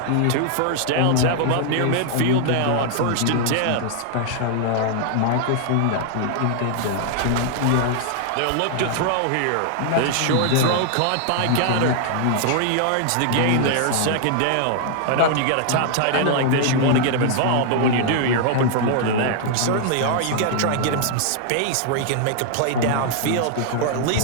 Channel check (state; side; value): different; both; correlation -0.01